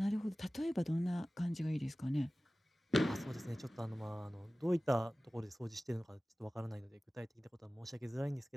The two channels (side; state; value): both; normal; correlation 0.97